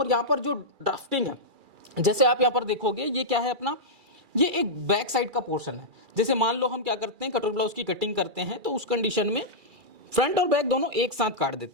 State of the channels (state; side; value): late; left; 2.3 ms